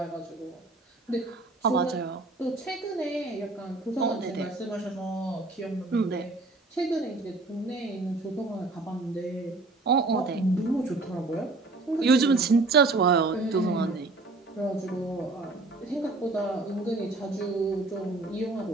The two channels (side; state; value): left; quieter; 3.3 dB